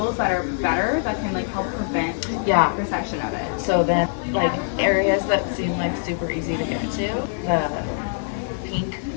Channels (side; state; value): right; silent; digital silence